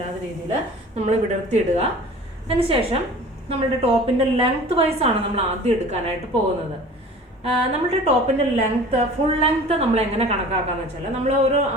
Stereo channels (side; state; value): both; normal; correlation 0.43